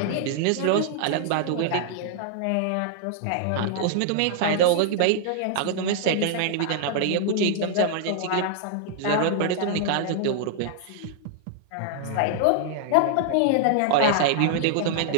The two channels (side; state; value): both; different; correlation 0.00